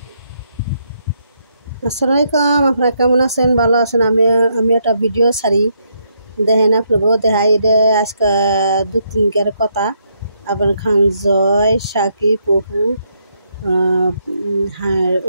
আসসালামু আলাইকুম, আপনারা কেমন আছেন? ভালো আছেন? আমি একটা ভিডিও ছাড়ি, দেখেন আপনাকে দেখাই। এটা আজকে 2-3 কথা। আপনার খান জয়, সাকিব, অপু, হ্যাঁ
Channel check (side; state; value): both; inverted; correlation -0.76